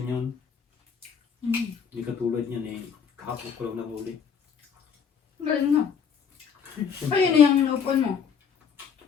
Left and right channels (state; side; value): quieter; right; 6.9 dB